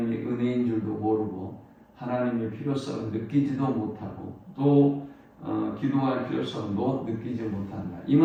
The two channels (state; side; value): identical; both; correlation 1.00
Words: 은혜인 줄도 모르고 하나님의 필요성을 느끼지도 못하고 또 기도할 필요성도 느끼지 못한다. 이